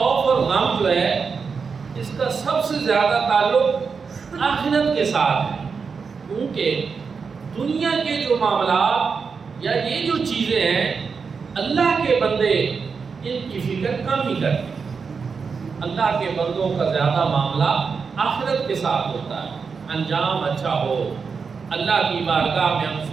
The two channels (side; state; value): left; quieter; 5.4 dB